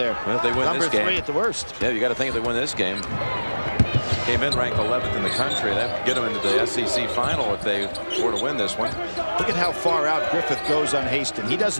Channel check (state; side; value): inverted; both; correlation -1.00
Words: Well, if they win this game, #3 at the worst. Yeah, you got to think if they win this game. Came in ranked 11th in the country. That would get them into the SEC final if they were to win this one. Look at how far out Griffith goes on Haston. He does